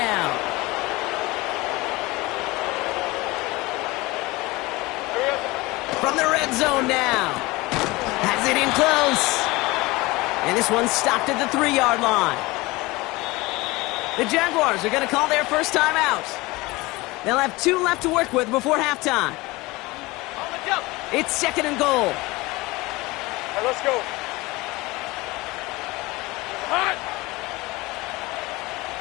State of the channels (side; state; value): right; quieter; 21.9 dB